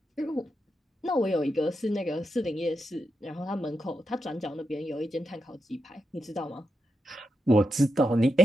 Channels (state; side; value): normal; both; correlation 0.86